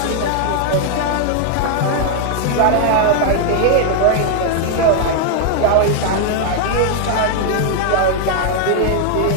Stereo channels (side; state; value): both; different; correlation 0.00